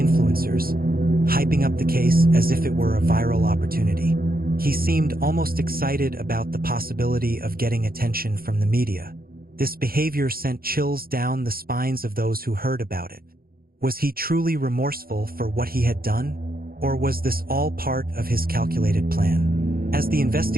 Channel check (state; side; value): late; left; 0.43 ms